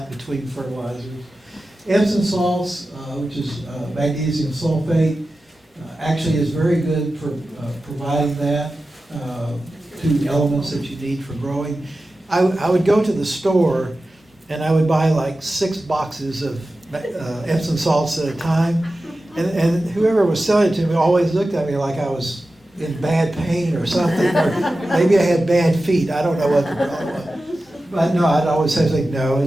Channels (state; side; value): normal; both; correlation 0.94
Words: between fertilizers. Epsom salts, which is magnesium sulfate, actually is very good for providing that, two elements that you need for growing. I would go to the store and I would buy like 6 boxes of Epsom salts at a time, and whoever was selling it to me always looked at me like I was in bad pain or something, or maybe I had bad feet. I don't know what the problem was. But no, I'd always say, like, no,